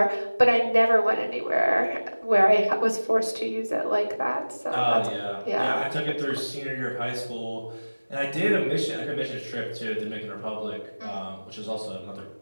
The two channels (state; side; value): inverted; both; correlation -1.00